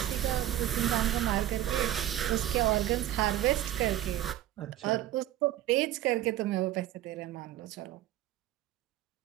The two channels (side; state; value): left; quieter; 13.3 dB